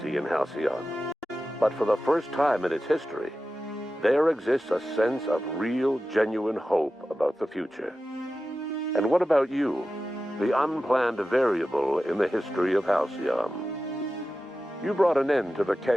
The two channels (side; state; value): both; normal; correlation 0.93